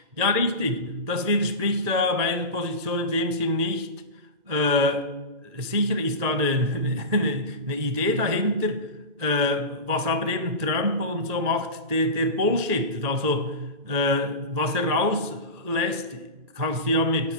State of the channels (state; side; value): late; left; 1.8 ms